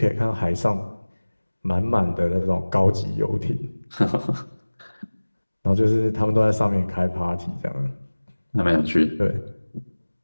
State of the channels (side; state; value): both; inverted; correlation -1.00